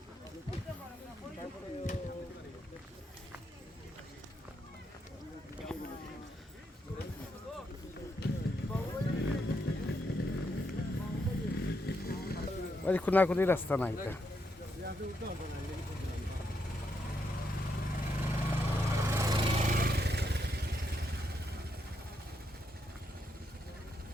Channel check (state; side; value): normal; both; correlation 0.79